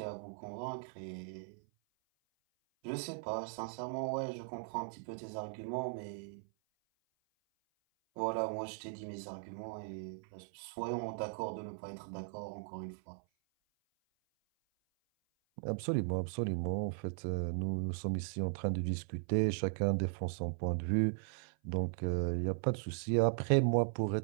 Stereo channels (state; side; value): silent; left; 52 dB below the other